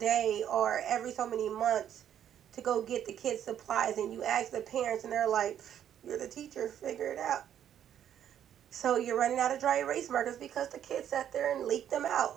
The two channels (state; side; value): quieter; left; 10.0 dB